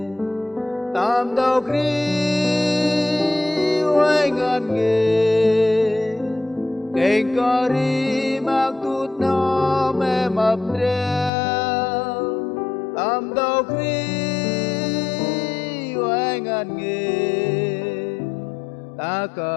tam đầu kri oai ngàn nghề kênh có ri mặc tút nó mẹ mập đeo tam đầu kri oai ngàn nghề ta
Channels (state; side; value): drops out; right; at 11.3 s